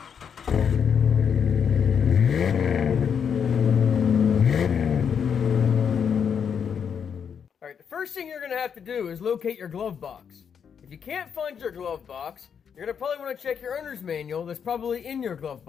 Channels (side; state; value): right; quieter; 7.3 dB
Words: Alright, the first thing you're going to have to do is locate your glove box. If you can't find your glove box, you're going to probably want to check your owner's manual that's probably in your glove